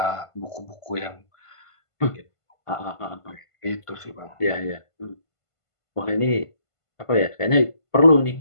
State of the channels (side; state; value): right; late; 1.5 ms